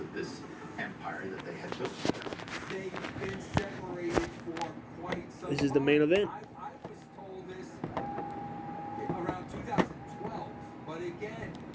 this empire that they had built together. they've been separated for quite some time. This is the main event. I was told this around 2012, but again,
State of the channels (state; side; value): identical; both; correlation 1.00